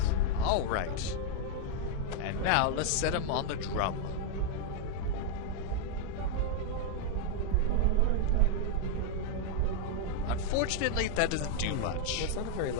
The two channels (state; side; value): different; both; correlation 0.00